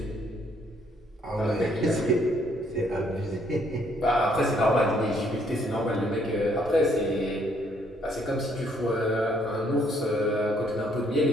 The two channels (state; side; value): normal; both; correlation 0.67